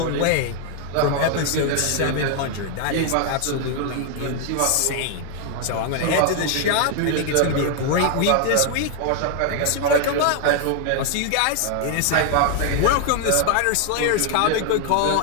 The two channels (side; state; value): both; different; correlation 0.00